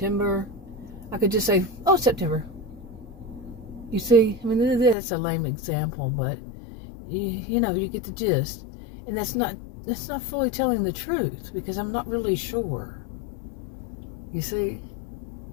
I could just say, oh, September. You see, I mean, that's a lame example, but you get the gist. And that's not fully telling the truth, because I'm not really sure. You see?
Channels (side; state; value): right; drops out; at 5.0 s